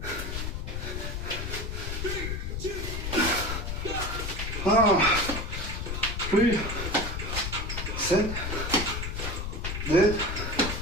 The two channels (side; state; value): left; noise; rumble, 4 dB below the sound